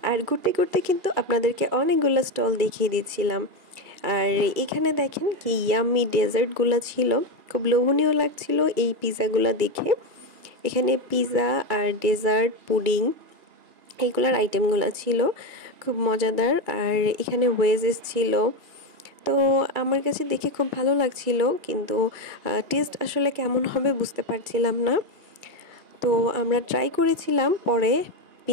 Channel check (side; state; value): left; late; 2.4 ms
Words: আর ঘুরতে ঘুরতে কিন্তু আপনাদেরকে অনেকগুলো স্টল দেখিয়ে দিচ্ছিলাম। আর এখানে দেখেন কি ইয়াম্মি ডেজার্টগুলো ছিল, খুব লোভনীয় লাগছিল এই পিৎজাগুলো দেখে। এখানে পিৎজা আর ডেজার্ট, পুডিং, এইগুলোর আইটেমগুলো ছিল খুব মজাদার। আর এখানে ওয়েজেস ছিল। তো আমার কাছে দেখে খুব ভালো লাগছিল, কিন্তু টেস্ট আসলে কেমন হবে বুঝতে পারছিলাম না। তো আমরা ট্রাই করেছিলাম পরে